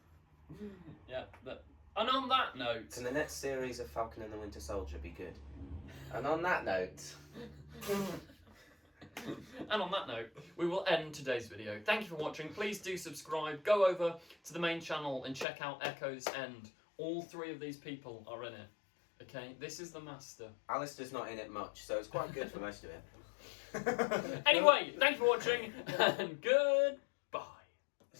Yeah, that And on that note... Can the next series of Falcon and the Winter Soldier be good? And on that note... And on that note, we will end today's video. Thank you for watching. Please do subscribe. Go over to the main channel and check out Echo's End. All 3 of these people are in it. Okay, this is the master. Alistair's not in it much, so it's quite good for most of it. Anyway, thank you for watching, and goodbye.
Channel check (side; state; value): right; drops out; at 15.5 s